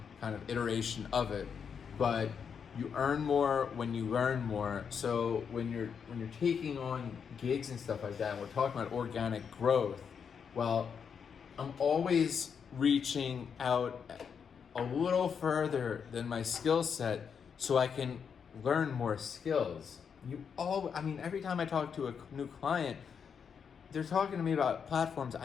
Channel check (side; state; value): right; quieter; 6.8 dB